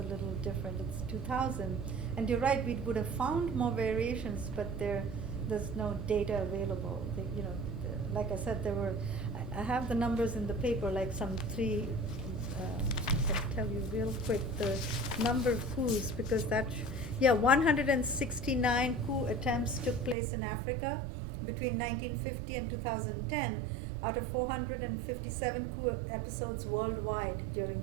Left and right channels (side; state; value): left; drops out; at 20.2 s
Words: little different. It's 2000, and you're right. We would have found more variations, but there's no data available. Like I said, there were. I have the numbers in the paper, like some three. I can tell you real quick the number of coups, because that Yeah, 169 coup attempts took place in Africa between 1950 and 2010 out of 457 coup episodes worldwide during